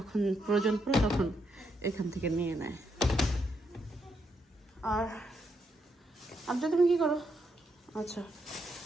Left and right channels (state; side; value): normal; both; correlation 0.79